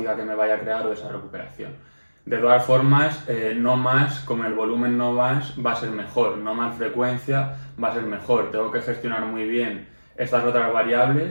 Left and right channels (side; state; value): both; inverted; correlation -1.00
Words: que me vaya a crear o esa recuperación. De todas formas, no más, como el volumen no más, va a ser mejor, no más frecuencia va a ser mejor. Tengo que gestionar muy bien estas otras